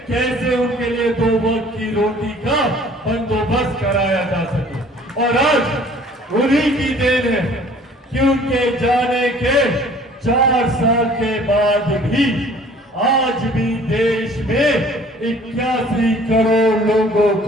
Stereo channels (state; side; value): normal; both; correlation 0.53